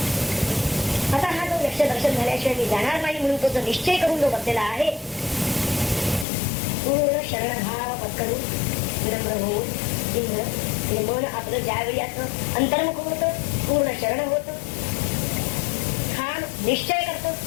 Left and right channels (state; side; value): drops out; right; at 6.2 s